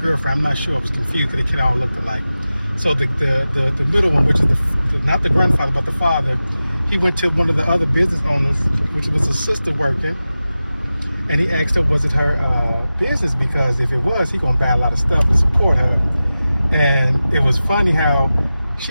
I'm not sure, I was confused because they kind of all looked alike. So the middle one, which is not the grandfather, but the father, he went to one of the other business owners, which was a sister working, and he asked her, was it her business? Because if it was, he gonna buy a lot of stuff and support her. And it was funny how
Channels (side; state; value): both; inverted; correlation -0.94